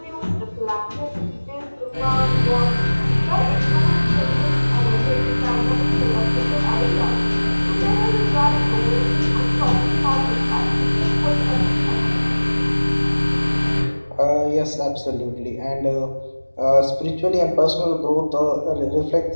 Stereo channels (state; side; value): inverted; both; correlation -1.00